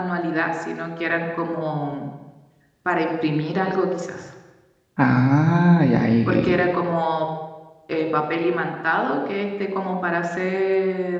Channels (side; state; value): both; identical; correlation 1.00